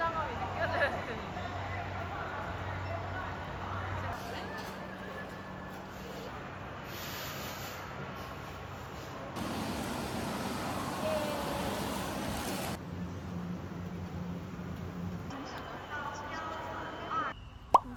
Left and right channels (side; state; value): both; identical; correlation 1.00